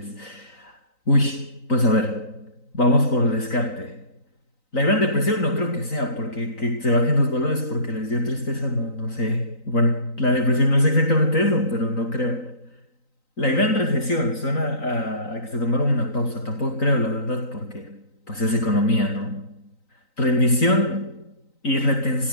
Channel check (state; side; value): late; right; 3.9 ms